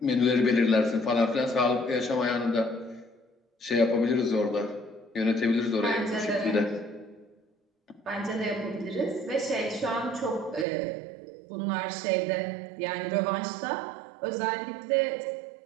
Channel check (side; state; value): left; drops out; at 10.7 s